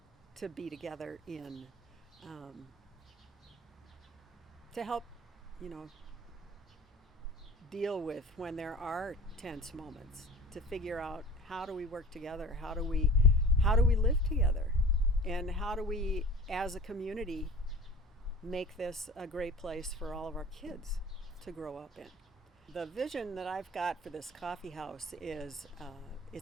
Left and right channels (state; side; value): normal; both; correlation 0.41